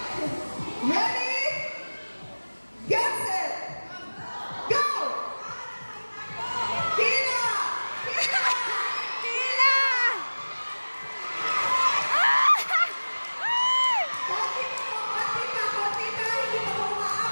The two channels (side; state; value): both; inverted; correlation -1.00